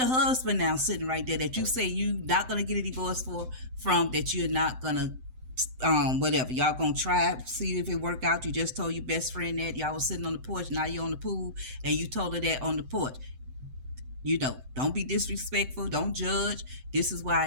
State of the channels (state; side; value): late; left; 7.8 ms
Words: husband now sitting right there that you say you're not going to get a divorce from, that you're not going to whatever, y'all gonna try see if it work out. You just told your best friend that y'all was sitting on the porch, now you're on the pool and you told her that on the porch. You know, don't be disrespectful, don't judge. This is where